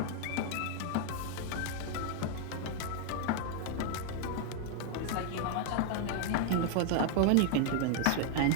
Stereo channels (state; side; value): different; both; correlation 0.00